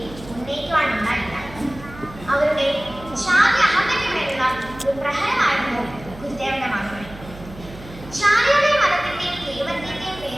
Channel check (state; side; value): noise; right; hum, 16 dB below the sound